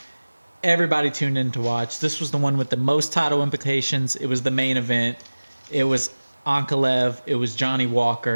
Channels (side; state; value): both; inverted; correlation -1.00